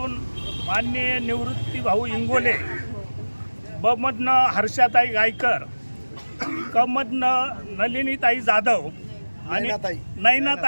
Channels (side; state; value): both; inverted; correlation -1.00